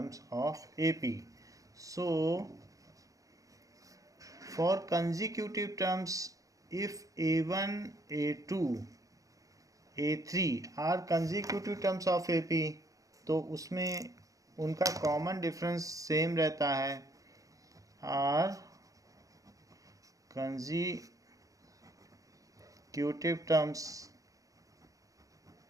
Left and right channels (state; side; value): late; left; 0.16 ms